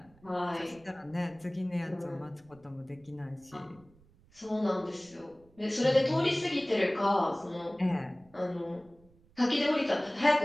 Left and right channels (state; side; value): noise; right; rumble, 28 dB below the sound